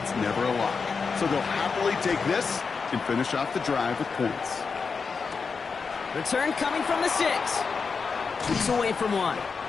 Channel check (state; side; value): quieter; right; 5.1 dB